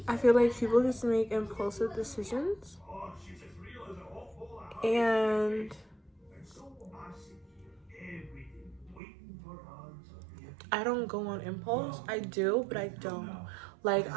I feel like people just make impulsive decisions, and I don't go on impulse. I do, but I don't. Like,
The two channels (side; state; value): left; drops out; at 9.0 s